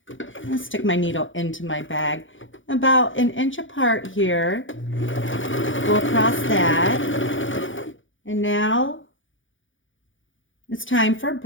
and stick my needle into my bag. About an inch apart here. Go across that. And now it's time for a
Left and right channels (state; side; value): late; right; 0.56 ms